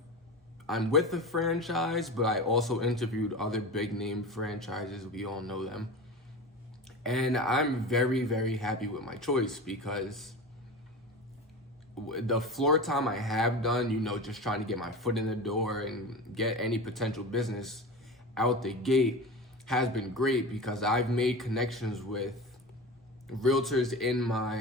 I'm with the franchise, but I also interviewed other big name franchises. We all know them. And I'm very happy with my choice because the floor time I have done, you know, just trying to get my foot in the door and get any potential business out the gate has been great because I've made connections with realtors in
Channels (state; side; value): normal; both; correlation 0.29